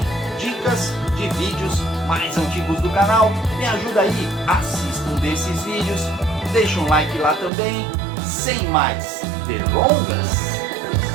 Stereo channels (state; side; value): drops out; left; at 7.5 s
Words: dicas de vídeos mais antigos do canal. Me ajuda aí, assista um desses vídeos, deixa um like lá também. Sem mais delongas,